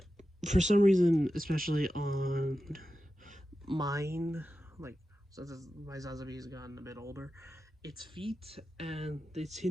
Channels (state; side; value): normal; both; correlation 0.92